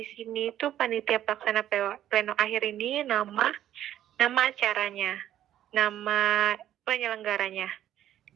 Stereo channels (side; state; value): left; quieter; 11.8 dB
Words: sini itu panitia pelaksana pleno akhir ini nama acaranya, nama penyelenggaranya.